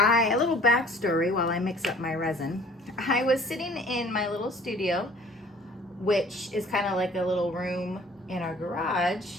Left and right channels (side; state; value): both; normal; correlation 0.52